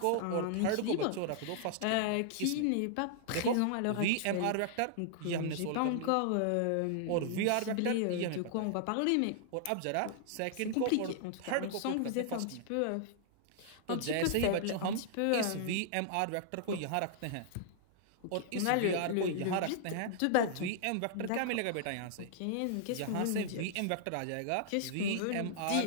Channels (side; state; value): both; different; correlation -0.01